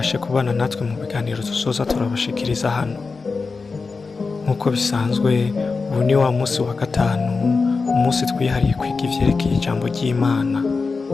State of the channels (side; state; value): right; quieter; 4.4 dB